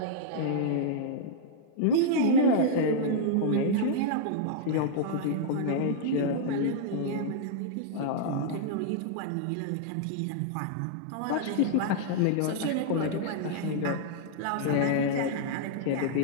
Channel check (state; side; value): different; both; correlation -0.02